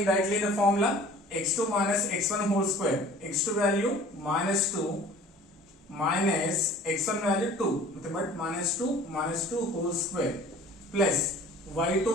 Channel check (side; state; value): both; normal; correlation 0.47